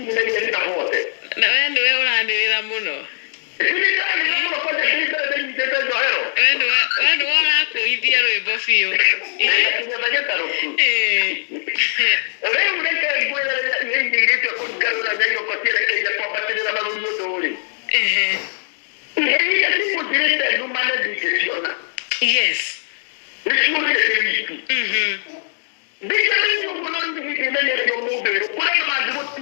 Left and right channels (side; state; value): right; silent; digital silence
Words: Na wewe urandirira muno. Wewe wala kuithia rwimbo biu. Yes.